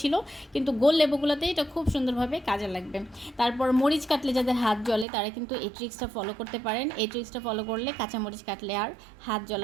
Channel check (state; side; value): drops out; left; at 5.1 s